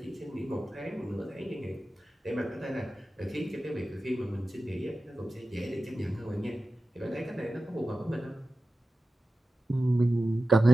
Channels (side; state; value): both; normal; correlation 0.94